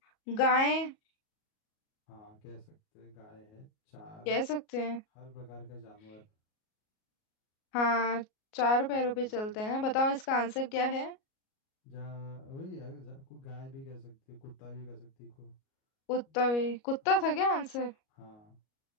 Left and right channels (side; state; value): right; late; 37 ms